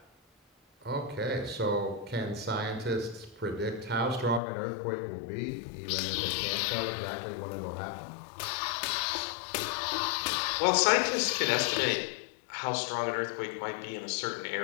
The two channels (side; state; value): right; drops out; at 4.4 s